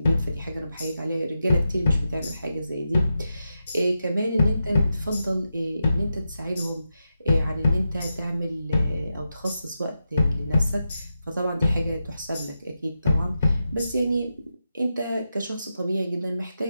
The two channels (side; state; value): both; inverted; correlation -0.88